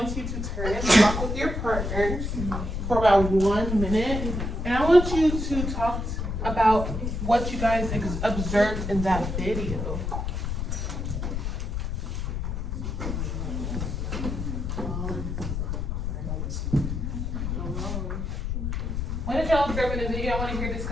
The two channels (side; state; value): left; noise; rumble, 3 dB below the sound